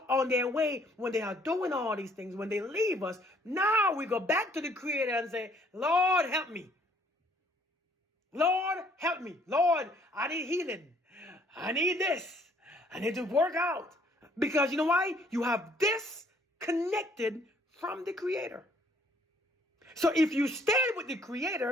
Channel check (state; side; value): normal; both; correlation 0.62